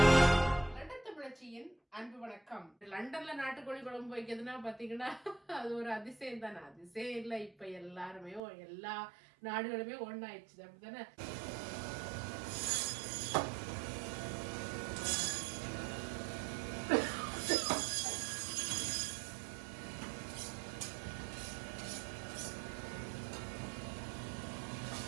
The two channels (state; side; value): drops out; left; at 8.4 s